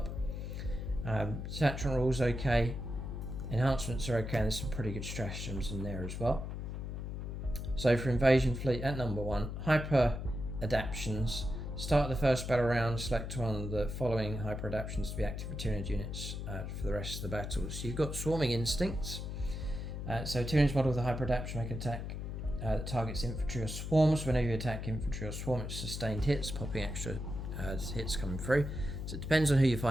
Detachment rules okay, enhancements are okay, and there's some pretty good stratagems in there as well. So for Invasion Fleet at number 1, Hyper Adaptions. Start the first battle round, select one of the following Hyper Adaptions to be active for Tyranid units for the rest of the battle. So you've got Swarming Instincts. So Tyranid's model with a Hyper Adaption make an attack that targets infantry or swarms. Whenever you attack infantry or swarm, it's sustained hits, popping extra hits coming through. So it depends on who you're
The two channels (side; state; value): left; noise; hum, 5 dB below the sound